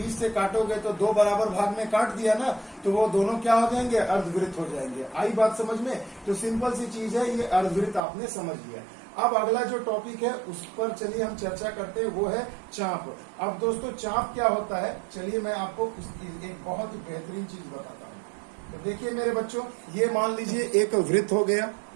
से काटोगे तो 2 बराबर भाग में काट दिया ना, तो वो दोनों क्या हो जाएंगे, अर्धवृत्त हो जाएंगे। आई बात समझ में। तो सिंपल सी चीज है, ये अर्धवृत्त आपने समझ लिया। अब अगला जो टॉपिक है उस पर चलिए हम चर्चा करते हैं, वो है चाप। अब दोस्तों चाप क्या होता है, चलिए मैं आपको एक बहुत ही बेहतरीन चीज बताता हूँ। तो देखिए मेरे बच्चों, ये मान लीजिए एक वृत्त हो गया।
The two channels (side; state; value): left; drops out; at 8.0 s